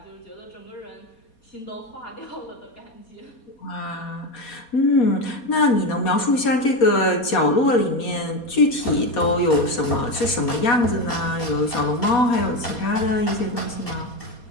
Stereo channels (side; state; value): right; late; 4.2 ms